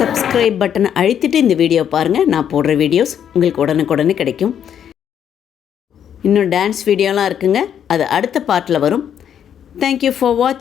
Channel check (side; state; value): right; quieter; 9.1 dB